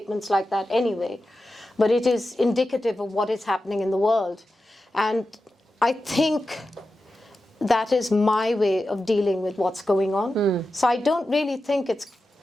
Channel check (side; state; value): both; normal; correlation 0.92